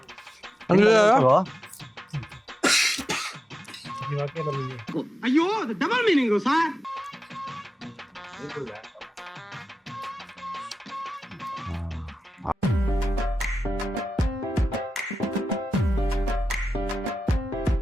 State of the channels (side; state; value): both; normal; correlation 0.93